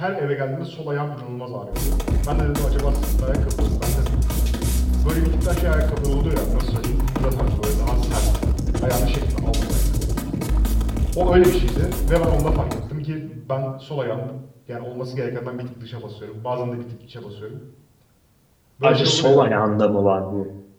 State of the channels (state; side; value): identical; both; correlation 1.00